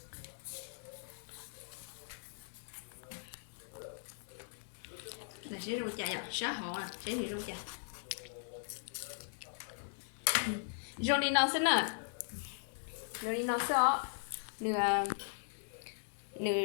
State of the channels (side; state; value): right; silent; digital silence